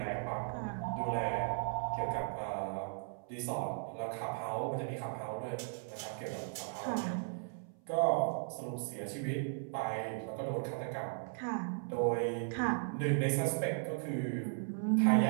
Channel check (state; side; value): silent; left; 53 dB below the other